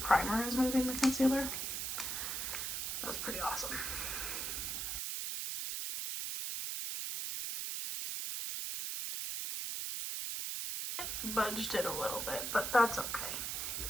is moving the concealer. That's pretty awesome. Budged it a little bit, but that's okay.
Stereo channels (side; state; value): right; noise; hiss, 2 dB below the sound